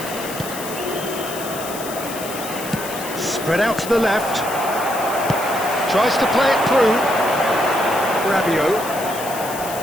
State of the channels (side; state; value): left; noise; hiss, 10 dB below the sound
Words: Spread out to the left. Tries to play it through. Rabiot.